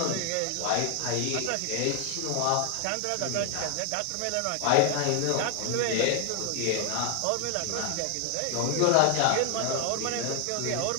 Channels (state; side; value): different; both; correlation 0.00